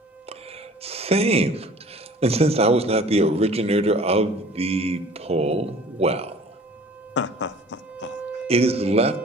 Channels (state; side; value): normal; both; correlation 0.48